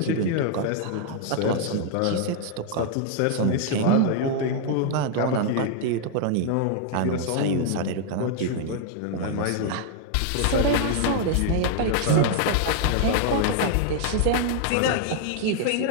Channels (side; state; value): both; different; correlation 0.00